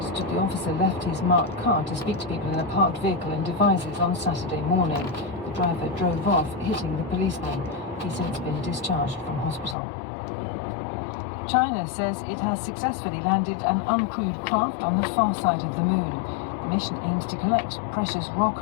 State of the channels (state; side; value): drops out; right; at 9.8 s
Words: the officer left his marked car to speak to people in a parked vehicle in Devizes on Saturday morning. The driver drove off, hitting the policeman. He's since been discharged from hospital. China says it has successfully landed an uncrewed craft on the far side of the moon. The mission aims to collect precious rock